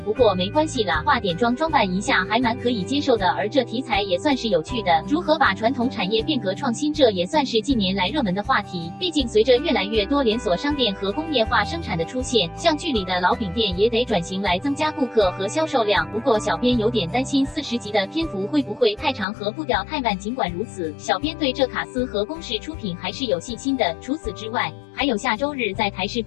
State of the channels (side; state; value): right; drops out; at 19.2 s